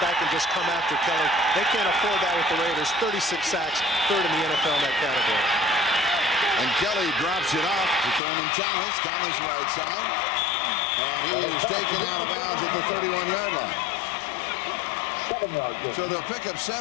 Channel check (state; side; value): drops out; right; at 8.2 s